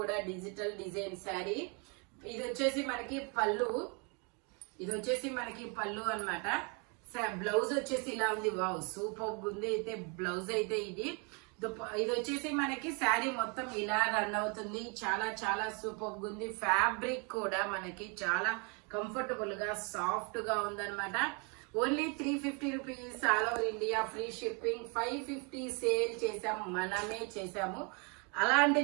డిజిటల్ డిజైన్ శారీ. ఇది వచ్చేసి మనకి పళ్ళు. ఇది వచ్చేసి మనకి పళ్ళు అన్నమాట. బ్లౌజ్ వచ్చేసి ఇలా ఉంది. వావ్ సూపర్ ఉంది. అయితే బ్లౌజ్ అయితే ఇది వచ్చేసి మనకి శారీ మొత్తం ఇలా రన్ అవుతుంది. చాలా చాలా సూపర్ ఉంది. ఫ్యాబ్రిక్ కూడా మనకి చాలా కంఫర్టబుల్ గా సాఫ్ట్ గా ఉందన్నమాట. Only 350 rupees. All over India free shipping. 550 sale చేసాము, మనమే చేసాము.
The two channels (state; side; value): quieter; left; 33.9 dB